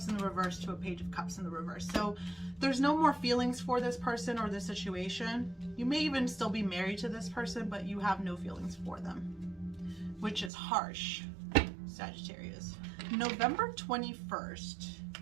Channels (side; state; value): left; drops out; at 10.5 s